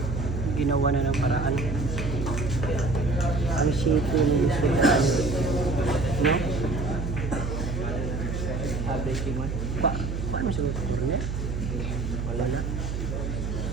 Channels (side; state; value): right; noise; hum, 3 dB below the sound